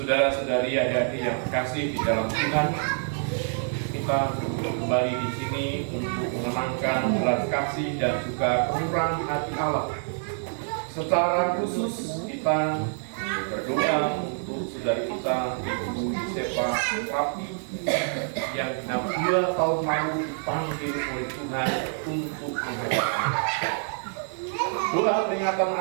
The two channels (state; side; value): silent; left; 60 dB below the other